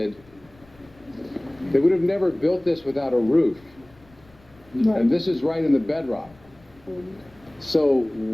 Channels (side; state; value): left; noise; rumble, 28 dB below the sound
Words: They would have never built this without a roof. Right. And this is right in the bedrock. So